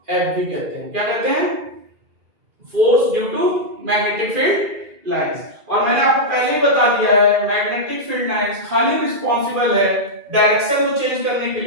F भी कहते हैं। क्या कहते हैं, force due to magnetic field lines. और मैंने आपको पहले ही बता दिया है मैग्नेटिक फील्ड लाइंस खाली रिस्पांसिबल है डायरेक्शन को चेंज करने के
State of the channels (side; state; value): left; late; 2.4 ms